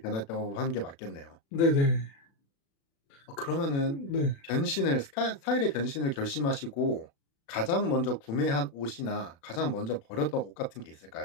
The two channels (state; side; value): late; right; 36 ms